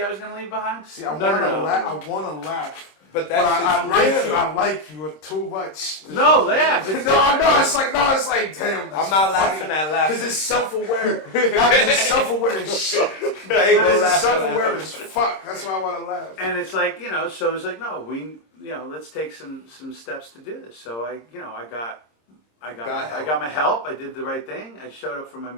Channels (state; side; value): late; right; 26 ms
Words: I was gonna leave behind. See, I want to laugh. But But that's I like you too much. No, Laugh. It's It's like, damn. I'm not laughing at laughing. Because it's self-aware. Because it's self-aware as shit. It's self-aware as fuck. That's why I want to laugh. And it's like, so it's like, no, let's take some steps to do this. So I got my help. I did the right thing. I showed up for my